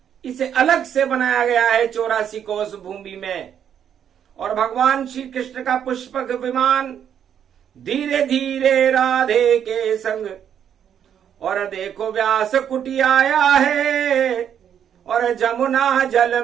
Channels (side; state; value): left; quieter; 8.9 dB